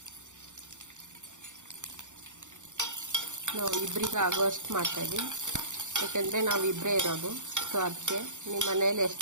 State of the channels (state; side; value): late; left; 0.85 ms